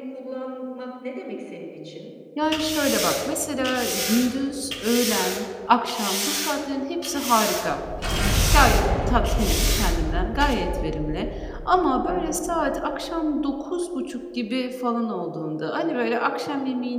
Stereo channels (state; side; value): identical; both; correlation 1.00